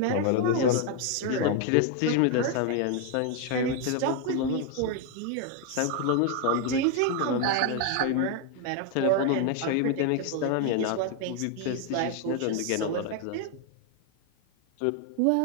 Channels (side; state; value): both; different; correlation 0.01